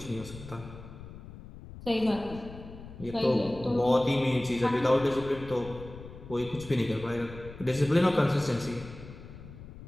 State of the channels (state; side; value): noise; left; rumble, 15 dB below the sound